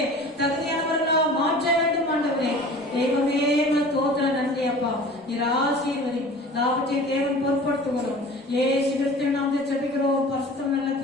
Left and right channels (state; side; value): normal; both; correlation 0.41